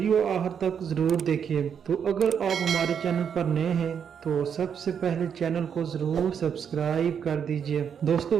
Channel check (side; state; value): left; quieter; 7.6 dB